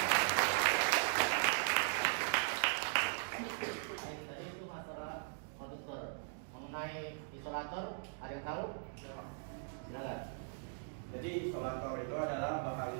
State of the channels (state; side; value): silent; left; digital silence